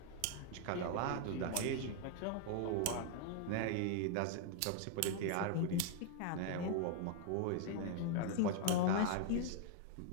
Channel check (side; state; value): both; different; correlation 0.00